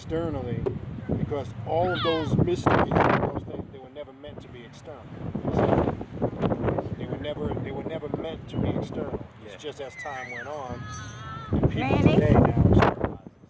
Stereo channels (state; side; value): identical; both; correlation 1.00